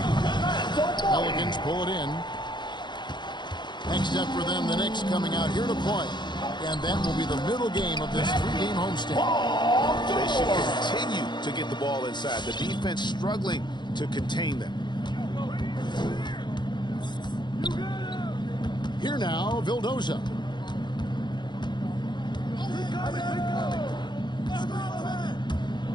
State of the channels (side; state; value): right; late; 0.21 ms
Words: Pelicans pull it in. Next up for them, the Knicks coming out here to play. And that will be the middle game of this 3-game homestand. They should continue to get the ball inside. The defense struggling to contain them. Here now, Vildoza.